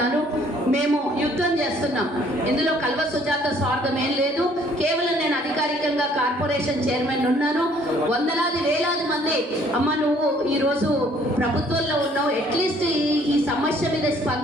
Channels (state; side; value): normal; both; correlation 0.60